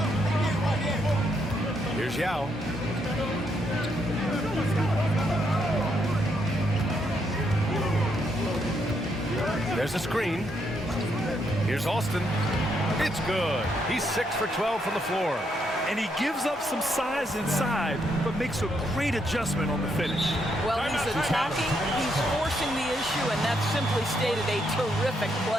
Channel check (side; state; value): both; normal; correlation 0.77